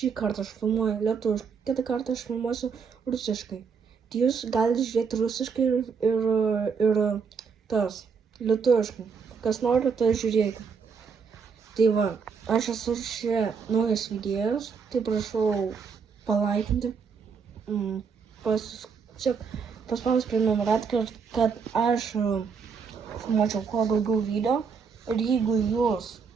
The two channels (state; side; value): quieter; left; 5.9 dB